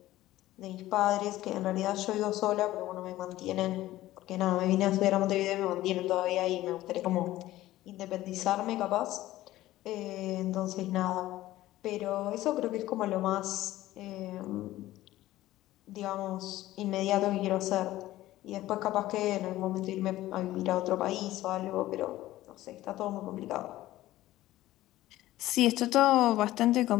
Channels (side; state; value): right; quieter; 15.6 dB